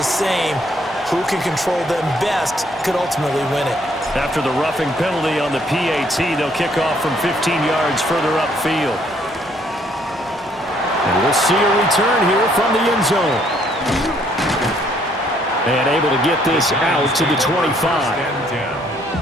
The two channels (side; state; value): both; normal; correlation 0.67